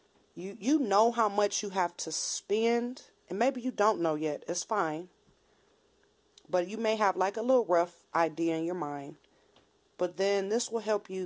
You know how much you have to spend, and maybe you don't know yet. It's fine. But you may have a little rough idea in your mind. But then this will help you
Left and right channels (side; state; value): both; identical; correlation 1.00